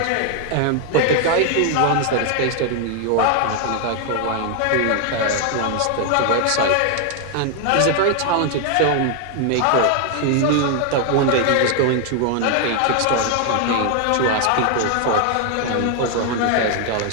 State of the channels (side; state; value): both; different; correlation 0.00